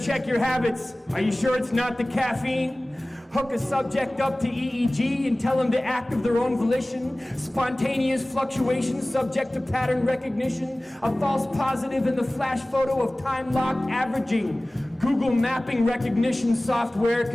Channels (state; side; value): normal; both; correlation 0.98